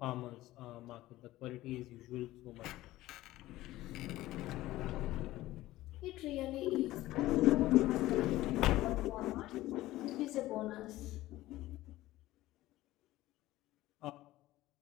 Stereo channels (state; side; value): quieter; right; 16.5 dB